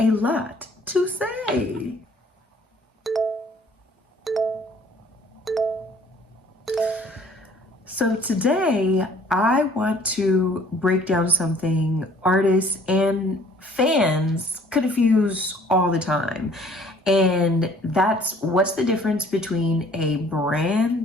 lot to say. So today I want to break down something artists and fans confuse all the time. And that's what's the difference between a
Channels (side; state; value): both; normal; correlation 0.56